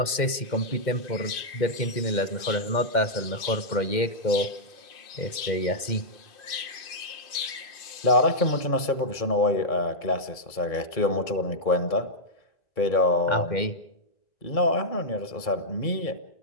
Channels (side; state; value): right; late; 2.1 ms